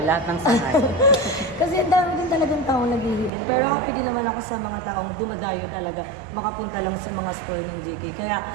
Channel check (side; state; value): left; drops out; at 3.3 s